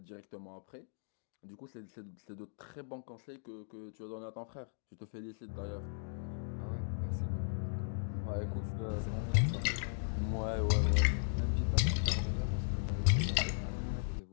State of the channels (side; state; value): right; silent; digital silence